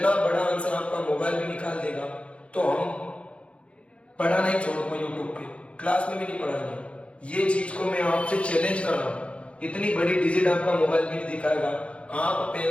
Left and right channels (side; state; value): right; late; 0.061 ms